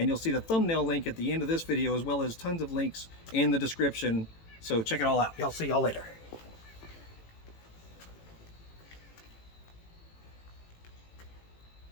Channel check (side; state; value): right; late; 18 ms